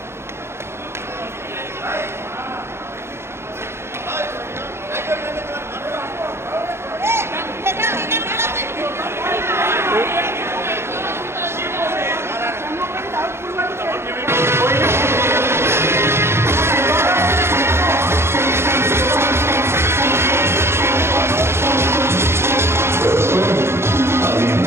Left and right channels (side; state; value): left; late; 0.12 ms